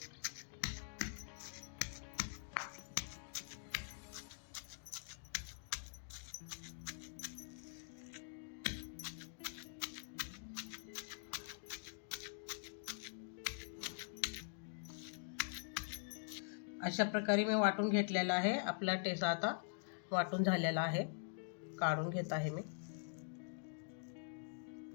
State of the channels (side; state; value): right; silent; digital silence